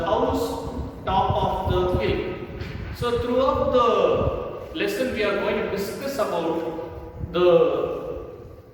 house top of the hill. So throughout the lesson we are going to discuss about the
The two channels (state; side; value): identical; both; correlation 1.00